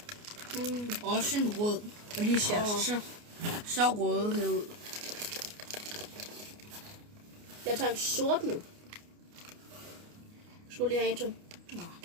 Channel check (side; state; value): left; late; 29 ms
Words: Også en rød. Og de ser så røde ud. Jeg tager en sort nu. Skulle lige have en til. Nå.